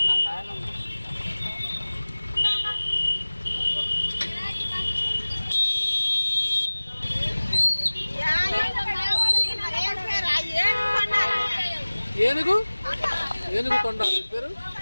ఏనుగు తొండాలి పేరు.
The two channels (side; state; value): both; inverted; correlation -1.00